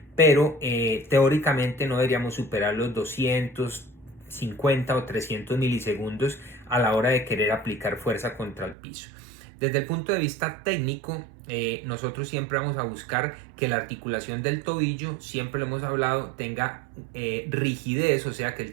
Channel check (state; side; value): drops out; left; at 8.8 s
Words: pero teóricamente no deberíamos superar los 250 o 300 milisegundos a la hora de querer aplicar fuerza contra el piso. Desde el punto de vista técnico, nosotros siempre vamos a buscar que la articulación del tobillo, siempre lo hemos hablado, tenga rigidez, o sea que